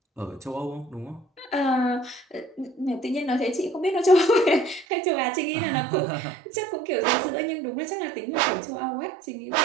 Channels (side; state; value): left; drops out; at 4.9 s